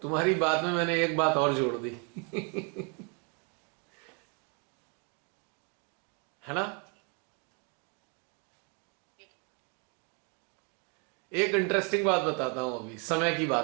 तुम्हारी बात में मैंने एक बात और जोड़ दी। है ना? जी। एक इंटरेस्टिंग बात बताता हूं, अभी समय की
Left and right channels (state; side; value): quieter; left; 35.9 dB